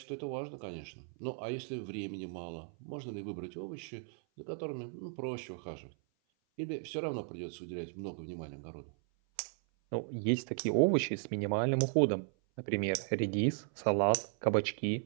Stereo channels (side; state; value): left; silent; 54 dB below the other